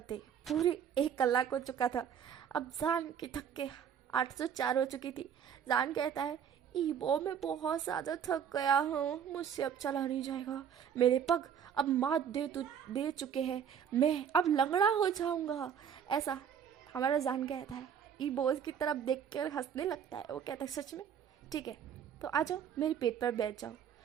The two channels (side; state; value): left; quieter; 8.2 dB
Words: पूरे 1 कलाक हो चुका था। अब जान की थक के 804 हो चुकी थी। जान कहता है, इबो मैं बहुत ज़्यादा थक गया हूँ, मुझसे अब चला नहीं जाएगा, मेरे पग अब मात दे चुके हैं, मैं अब लंगड़ा हो जाऊँगा ऐसा हमारा जान कहता है। इबो उसकी तरफ देख कर हंसने लगता है। वो कहता है, सच में? ठीक है तो आ जाओ मेरे पेट पर बैठ जाओ,